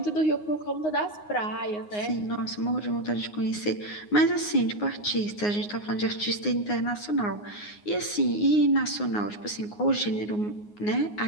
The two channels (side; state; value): right; late; 9.6 ms